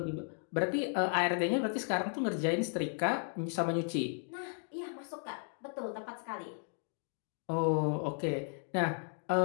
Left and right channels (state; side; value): silent; right; 54 dB below the other